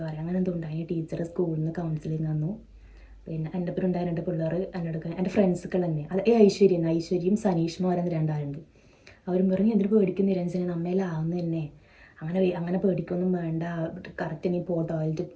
പറയാം അങ്ങനെ എന്തുണ്ടായി. ടീച്ചർ സ്കൂളിൽ നിന്ന് കൗൺസിലിംഗ് തന്നു. പിന്നെ എൻ്റെ ഒപ്പം ഉണ്ടായ 2 പിള്ളേർ എന്നോട് എൻ്റെ ഫ്രണ്ട്സുകൾ തന്നെ, അത് ഐശ്വര്യയും സനീഷ്മ പറയുന്ന 2 ആളുണ്ട്. അവരും പറഞ്ഞു എന്തിനു പേടിക്കുന്ന നിരഞ്ജന നമ്മയിലാവുന്ന തന്നെ, അങ്ങനെ പേടിക്കൊന്നും വേണ്ട, കറക്റ്റ് നീ ടോയ്ലറ്റിൽ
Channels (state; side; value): identical; both; correlation 1.00